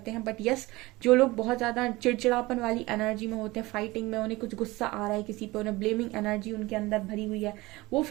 हैं। बट यस, जो लोग बहुत ज्यादा चिड़चिड़ापन वाली एनर्जी में होते हैं, फाइटिंग में, उन्हें कुछ गुस्सा आ रहा है किसी पे, उन्हें ब्लेमिंग एनर्जी उनके अंदर भरी हुई है, वो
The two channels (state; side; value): quieter; left; 20.8 dB